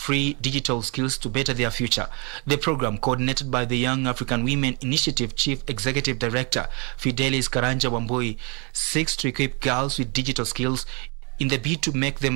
digital skills to better their future. The program, coordinated by the Young African Women Initiative Chief Executive Director Fidelis Karanja Wambui, seeks to equip girls with digital skills in the bid to make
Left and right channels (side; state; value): left; quieter; 33.1 dB